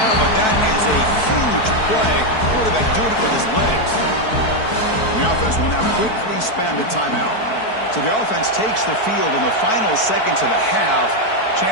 but that is a huge play. Quarterback doing it with his legs. The offense will now quickly spend a timeout. So the offense takes the field in the final seconds of the half.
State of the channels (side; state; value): right; late; 4.6 ms